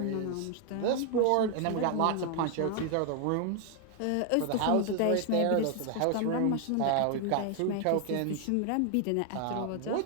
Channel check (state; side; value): different; both; correlation 0.00